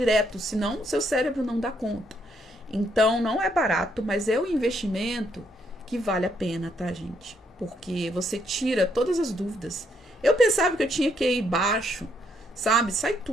senão seu cérebro não dá conta. Então, não é barato, mas é um investimento que vale a pena, tá, gente? Porque você tira todas as dúvidas. Eu pensava que eu tinha que ir baixo, sabe? Sai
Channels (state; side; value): normal; both; correlation 0.73